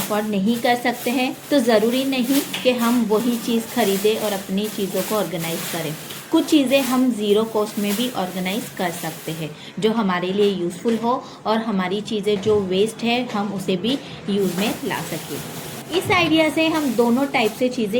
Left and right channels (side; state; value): both; identical; correlation 1.00